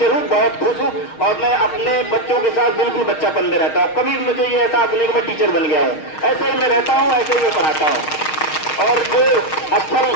हूँ, बहुत खुश हूँ और मैं अपने बच्चों के साथ बिल्कुल बच्चापन में रहता हूँ। कभी मुझे ये एहसास नहीं कि मैं टीचर बन गया हूँ। ऐसे ही मैं रहता हूँ, ऐसे ही मैं पढ़ाता हूँ। और जो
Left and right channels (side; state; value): right; late; 6.4 ms